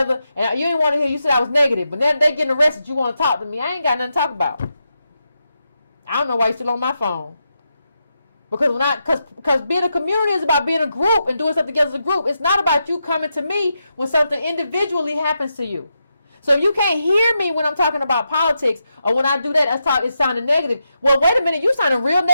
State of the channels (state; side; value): inverted; both; correlation -0.85